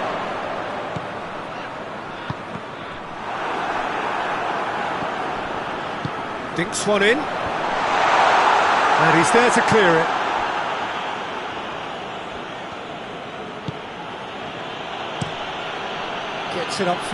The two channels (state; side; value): identical; both; correlation 1.00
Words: Dinks one in. And he's there to clear it. Gets it